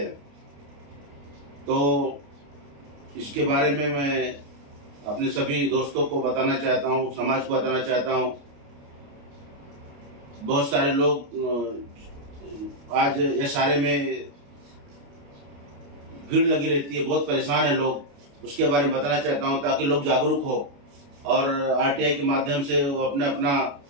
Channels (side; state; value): left; late; 29 ms